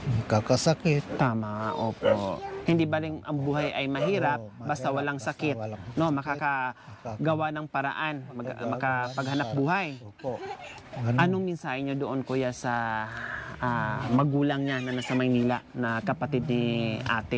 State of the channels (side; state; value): both; identical; correlation 1.00